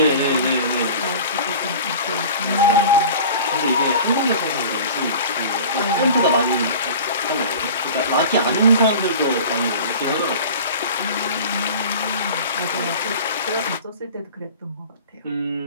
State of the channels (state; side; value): inverted; both; correlation -0.39